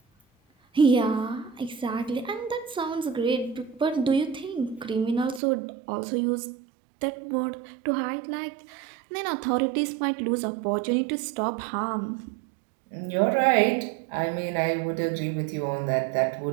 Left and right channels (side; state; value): left; drops out; at 5.4 s